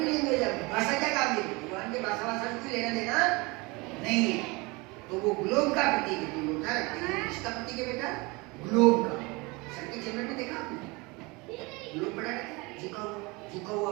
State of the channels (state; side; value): quieter; left; 25.6 dB